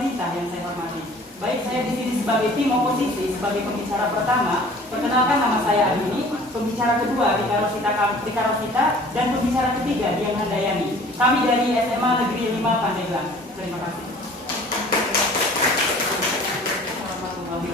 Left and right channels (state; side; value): normal; both; correlation 0.49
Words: yang saya hormati. Baik, saya di sini sebagai tim oposisi, sebagai pembicara pertama. Perkenalkan, nama saya Adini, pembicara kedua Rika Rosita, dan pembicara ketiga Dian Handayani. Kami dari SMA Negeri 5 Pandeglang. Terima kasih. Waalaikumsalam